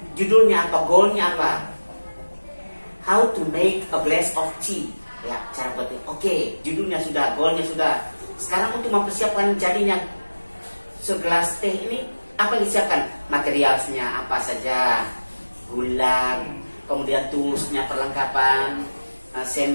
Judulnya apa, goalnya apa? How to make a glass of tea. Ya, cara buat teh. Oke, judulnya sudah, goalnya sudah. Sekarang untuk mempersiapkan jadinya segelas teh ini, apa yang disiapkan? Materialnya apa saja? Gula, kemudian tulusnya, perlengkapan,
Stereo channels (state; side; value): inverted; both; correlation -1.00